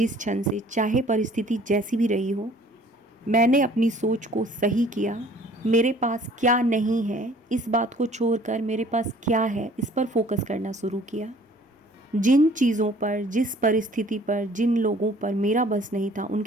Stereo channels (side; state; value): both; normal; correlation 0.54